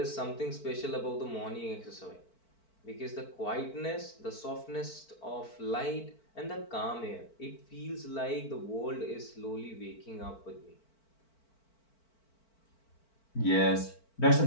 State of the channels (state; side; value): late; right; 4.5 ms